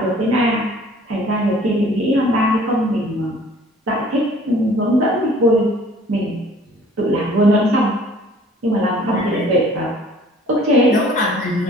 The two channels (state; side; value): normal; both; correlation 0.53